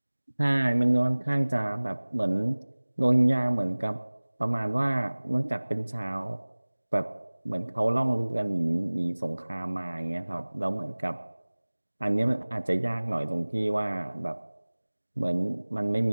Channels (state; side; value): inverted; both; correlation -1.00